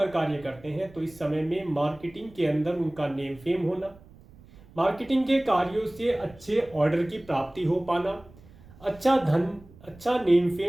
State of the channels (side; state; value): right; noise; rumble, 23 dB below the sound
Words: कार्य करते हैं तो इस समय में मार्केटिंग के अंदर उनका नेम फेम होना, मार्केटिंग के कार्यों से अच्छे ऑर्डर की प्राप्ति हो पाना, अच्छा धन, अच्छा नेम